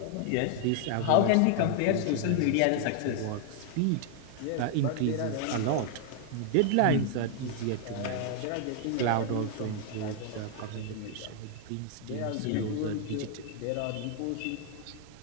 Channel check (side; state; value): both; different; correlation 0.00